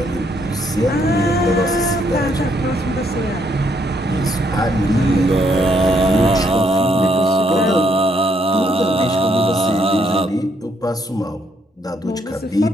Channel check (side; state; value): both; normal; correlation 0.72